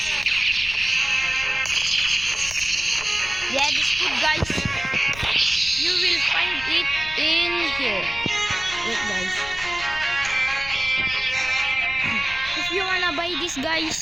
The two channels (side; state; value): left; noise; rumble, 16 dB below the sound